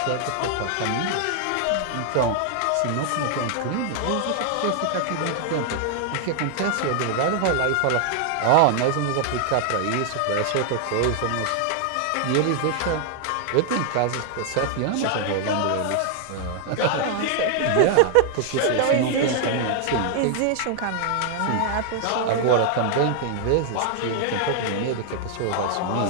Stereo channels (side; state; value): both; different; correlation 0.00